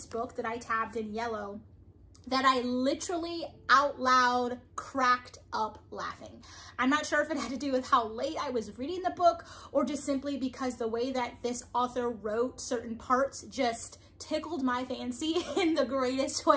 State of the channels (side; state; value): both; identical; correlation 1.00